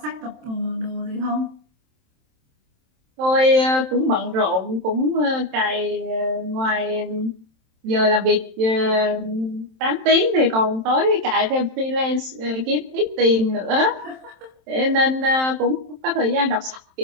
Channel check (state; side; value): late; left; 27 ms